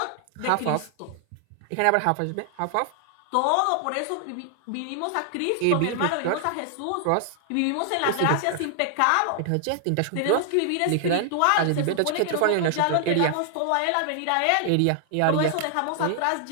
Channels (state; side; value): different; both; correlation 0.00